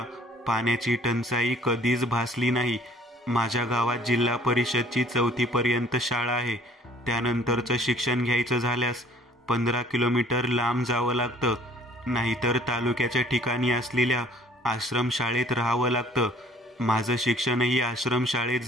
पाण्याची टंचाई कधीच भासली नाही. माझ्या गावात जिल्हा परिषदची 4थी पर्यंत शाळा आहे. त्यानंतरचं शिक्षण घ्यायचं झाल्यास 15 किलोमीटर लांब जावं लागतं, नाहीतर तालुक्याच्या ठिकाणी असलेल्या आश्रमशाळेत राहावं लागतं. माझं शिक्षणही आश्रमशाळेत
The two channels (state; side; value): normal; both; correlation 0.56